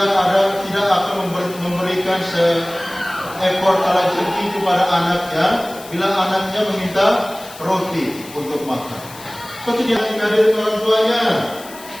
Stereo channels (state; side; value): noise; left; hiss, 17 dB below the sound